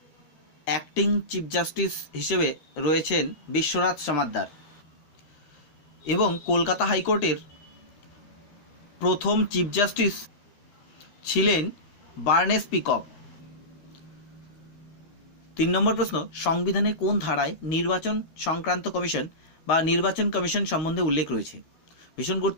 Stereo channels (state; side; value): late; right; 13 ms